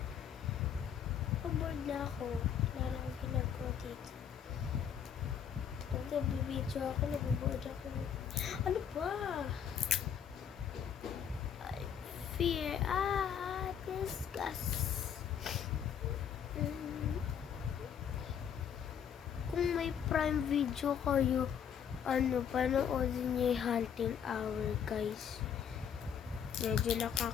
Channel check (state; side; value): quieter; right; 8.3 dB